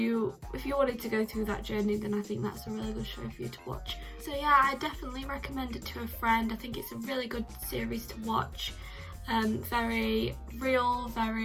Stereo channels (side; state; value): both; identical; correlation 1.00